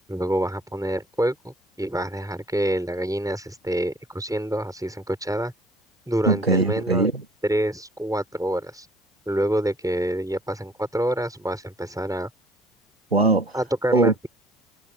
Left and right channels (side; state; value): both; normal; correlation 0.54